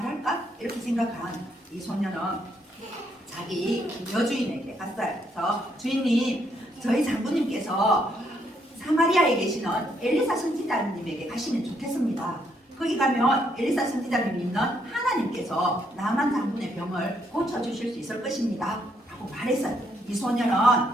이렇게 생각한 이 소녀는 자기 여주인에게 갔어요. 그래서 주인님, 저희 장군님께서 사마리아에 계시는 엘리사 선지자님에게 가시면 좋겠습니다. 거기 가면 엘리사 선지자님 믿는 하나님께서 나만 장군의 병을 고쳐주실 수 있을 것입니다 라고 말했어요. 이 소녀는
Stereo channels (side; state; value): both; normal; correlation 0.73